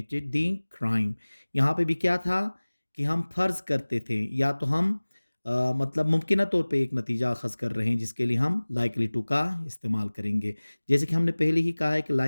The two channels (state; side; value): inverted; both; correlation -1.00